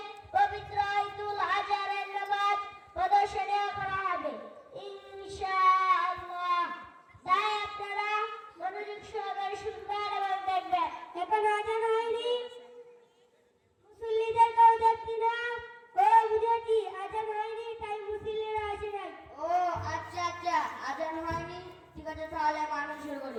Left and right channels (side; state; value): both; identical; correlation 1.00